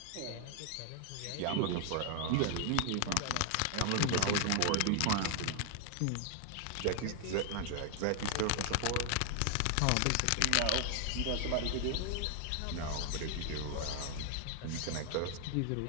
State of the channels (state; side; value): different; both; correlation 0.00